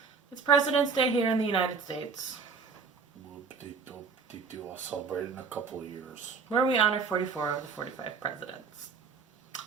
It's President's Day here in the United States. I'll celebrate in a couple of years. Where we honor 44 of the 45 presidents.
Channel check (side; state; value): left; quieter; 5.2 dB